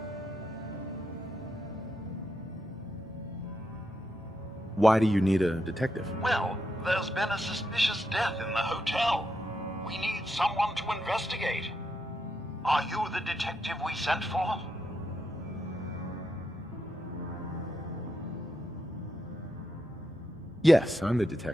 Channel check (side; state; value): both; normal; correlation 0.83